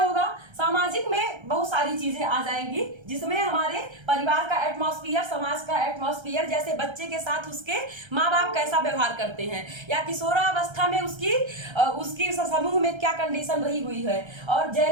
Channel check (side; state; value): left; late; 1.3 ms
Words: सामाजिक में बहुत सारी चीजें आ जाएंगी, जिसमें हमारे परिवार का एटमॉस्फेयर, समाज का एटमॉस्फेयर, जैसे बच्चे के साथ उसके माँ बाप कैसा व्यवहार करते हैं, या किशोरावस्था में उसकी समूह में क्या कंडीशन रही हुई है। और